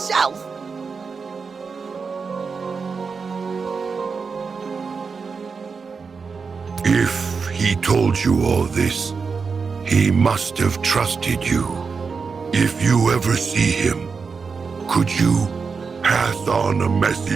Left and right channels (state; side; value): quieter; left; 5.2 dB